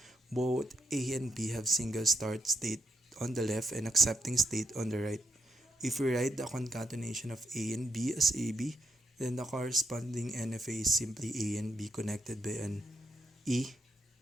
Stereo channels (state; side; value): normal; both; correlation 0.80